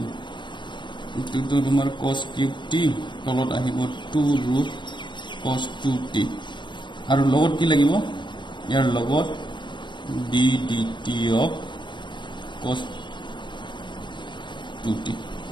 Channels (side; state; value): right; late; 0.23 ms